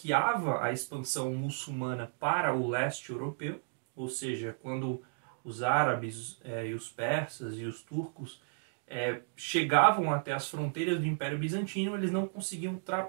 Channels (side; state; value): left; silent; digital silence